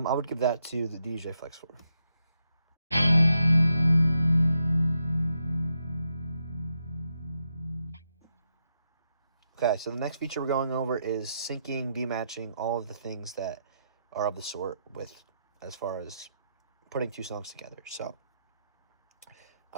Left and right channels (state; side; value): inverted; both; correlation -0.82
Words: would give that to the DDJ FLX 4. Okay, so the next feature we're going over is syncing, B-matching, all of the things that are of the sort with as far as putting 2 songs together. So,